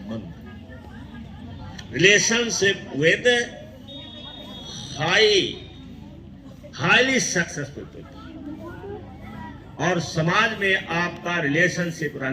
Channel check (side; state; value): both; identical; correlation 1.00